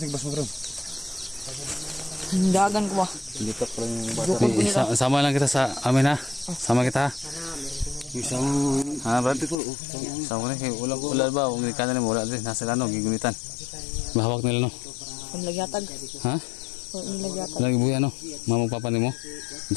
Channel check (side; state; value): right; drops out; at 9.6 s